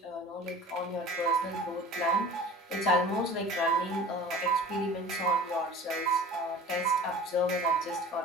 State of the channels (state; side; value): normal; both; correlation 0.41